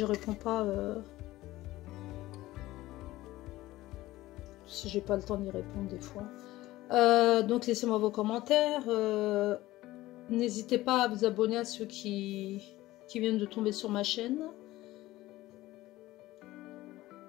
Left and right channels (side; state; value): right; quieter; 17.1 dB